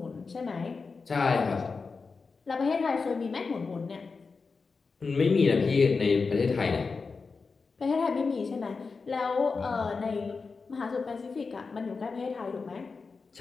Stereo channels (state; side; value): quieter; right; 4.6 dB